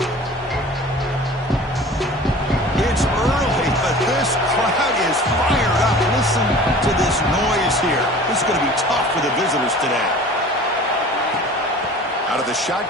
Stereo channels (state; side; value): normal; both; correlation 0.43